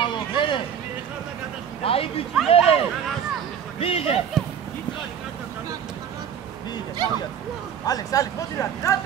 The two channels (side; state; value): left; quieter; 8.3 dB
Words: მერე. აი ბიჭი, მერე. მიიღე. ალექს, მოდი